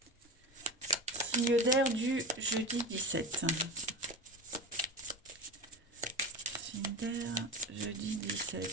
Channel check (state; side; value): normal; both; correlation 0.27